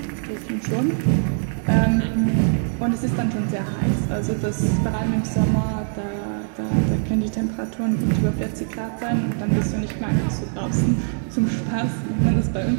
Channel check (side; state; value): left; silent; 64 dB below the other